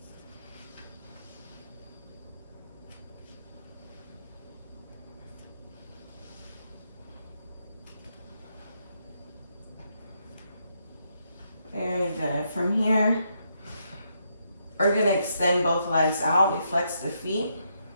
Very good. From here, we're gonna extend both legs out. We flex the feet.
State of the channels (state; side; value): inverted; both; correlation -0.78